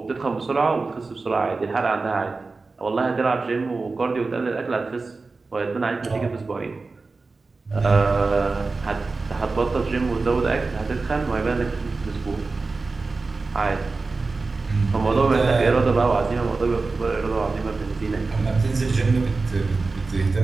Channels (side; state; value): left; quieter; 3.9 dB